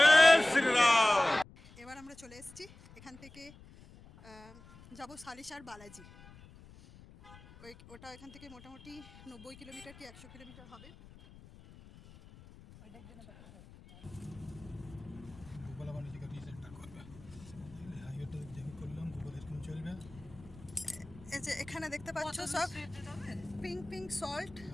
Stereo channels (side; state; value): left; noise; rumble, 20 dB below the sound